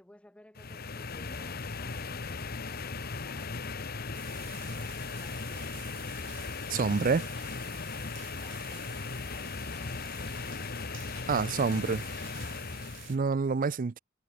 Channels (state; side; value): normal; both; correlation 0.31